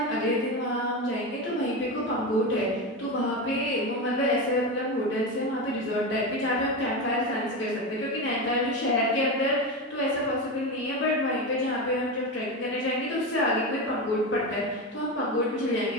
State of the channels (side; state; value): both; normal; correlation 0.18